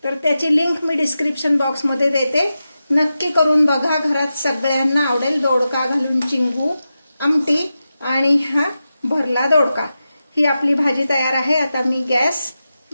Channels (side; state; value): both; inverted; correlation -0.91